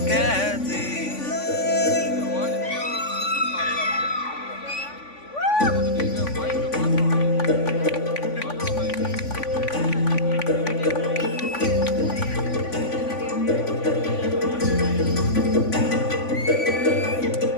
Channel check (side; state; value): right; late; 3.5 ms